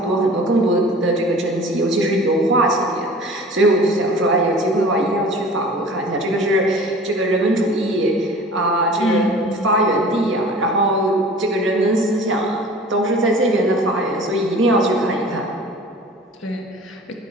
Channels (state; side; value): normal; both; correlation 0.43